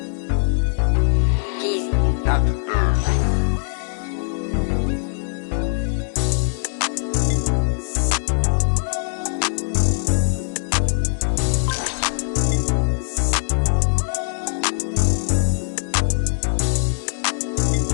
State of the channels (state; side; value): silent; right; 65 dB below the other